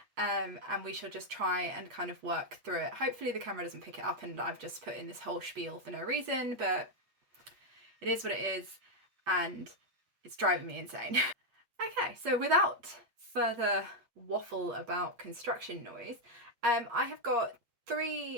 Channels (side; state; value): left; late; 8.4 ms